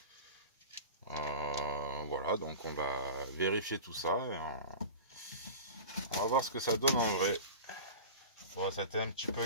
Voilà, donc on va vérifier tout ça et on va voir ce que ça donne en vrai. Bon, c'était un petit peu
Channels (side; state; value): both; inverted; correlation -0.33